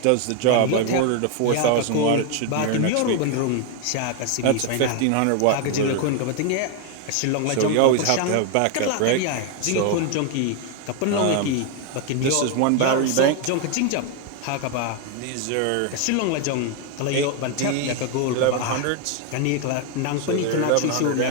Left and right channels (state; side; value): different; both; correlation 0.01